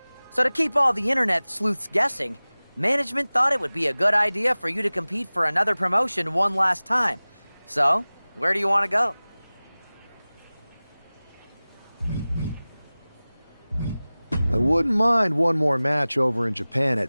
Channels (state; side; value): inverted; both; correlation -0.99